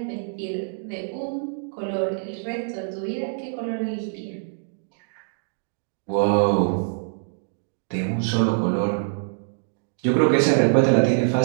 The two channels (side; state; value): left; silent; digital silence